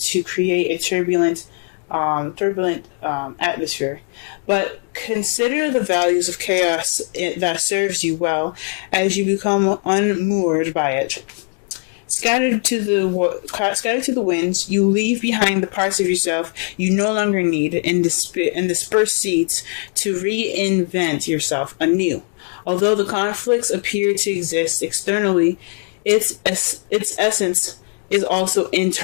create a turbulent atmosphere, but consider the values of chaos that serves you well as you become unmoored by it. Scattered to the winds, you leave behind the parts of yourself you no longer need and disperse seeds to reinvent yourself anew. Although the conflicts appear to exist externally, its essence is also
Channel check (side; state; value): right; quieter; 38.7 dB